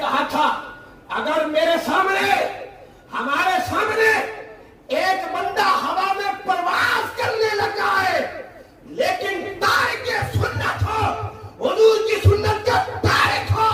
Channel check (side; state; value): both; identical; correlation 1.00